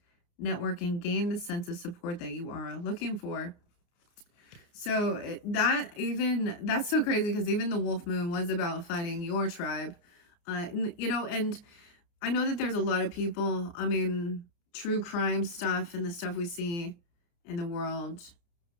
network, and gain the sense of support that you are looking for. So that's so crazy because even the Wolf Moon was about finding your tribe. You know, and I know that there's a lot of people, I mean, true crime stuff and the stuff we see in the world,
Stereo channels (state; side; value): late; right; 29 ms